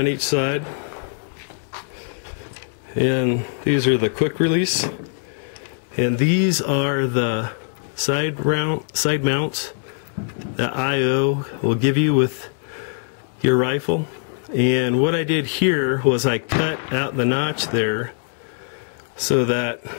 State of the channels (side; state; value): right; silent; digital silence